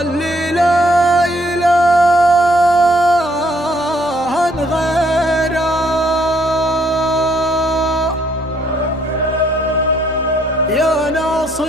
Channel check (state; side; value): noise; left; rumble, 25 dB below the sound